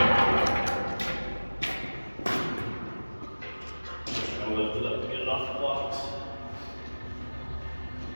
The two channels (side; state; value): both; inverted; correlation -1.00